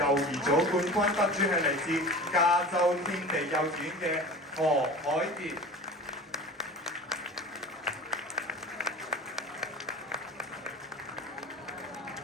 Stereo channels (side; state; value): both; normal; correlation 0.36